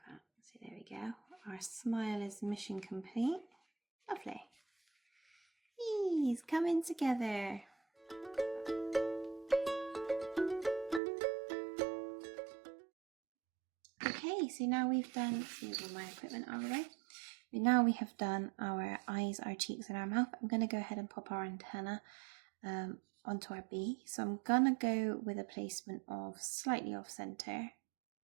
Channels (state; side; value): drops out; left; at 11.0 s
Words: that. So there we go. Our smile is mission complete. Lovely. He's coming together. Okay, so now we've done, let's move my equipment out of the way. Now we have done our eyes, our cheeks and our mouth. I'm going to go ahead and pop our antenna onto our bee. So I'm going to go with a placement of slightly off center. I'm